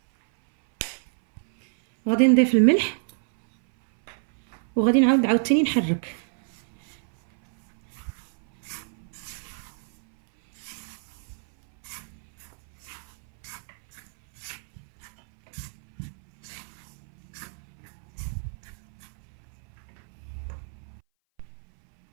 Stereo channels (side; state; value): left; silent; 58 dB below the other